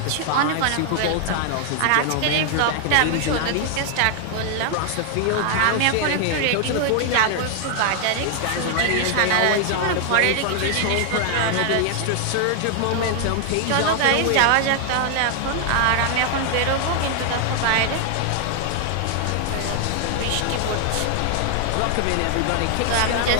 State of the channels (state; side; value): different; both; correlation 0.00